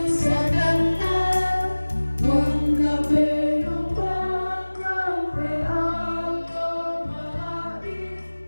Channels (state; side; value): inverted; both; correlation -1.00